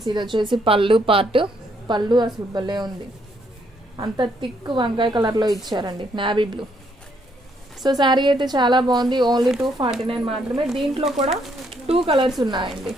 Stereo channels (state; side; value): normal; both; correlation 0.72